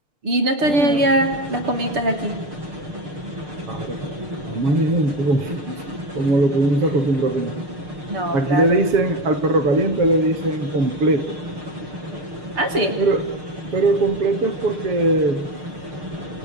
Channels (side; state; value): left; late; 6.8 ms